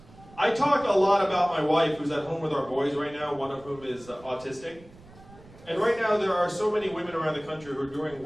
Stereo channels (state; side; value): noise; right; rumble, 22 dB below the sound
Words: I talk a lot about my wife, who's at home with our boys right now, one of whom is autistic. And right now there are so many women around the country who are doing